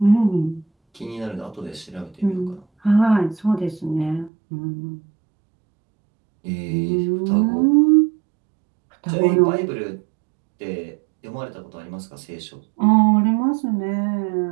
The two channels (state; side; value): drops out; left; at 4.3 s